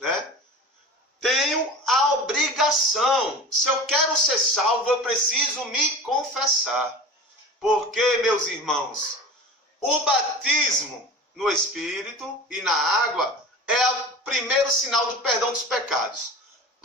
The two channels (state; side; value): normal; both; correlation 0.35